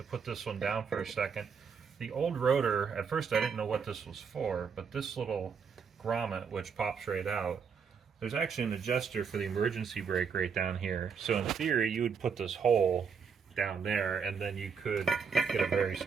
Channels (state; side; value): quieter; left; 6.1 dB